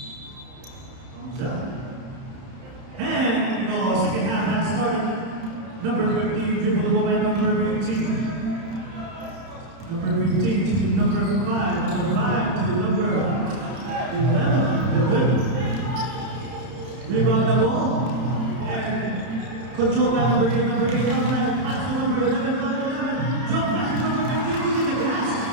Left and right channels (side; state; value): left; late; 31 ms